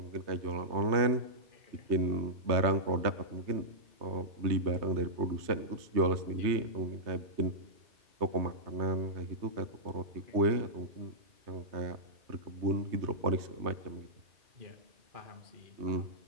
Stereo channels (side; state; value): left; late; 3.2 ms